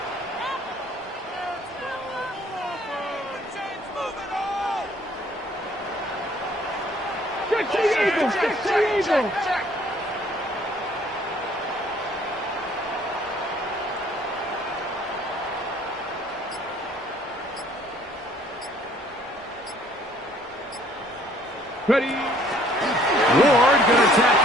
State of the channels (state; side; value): normal; both; correlation 0.59